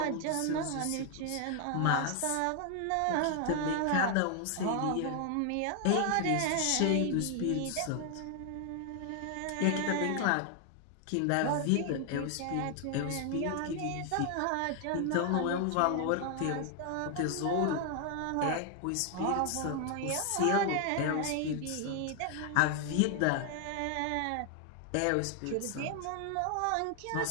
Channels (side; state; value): both; different; correlation 0.00